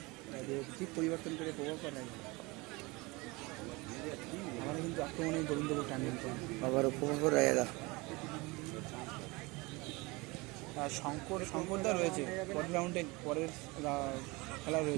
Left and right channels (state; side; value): quieter; left; 24.5 dB